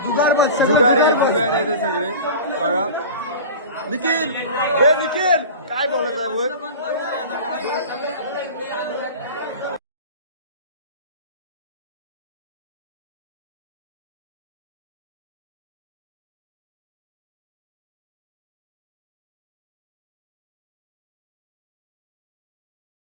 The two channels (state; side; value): inverted; both; correlation -0.34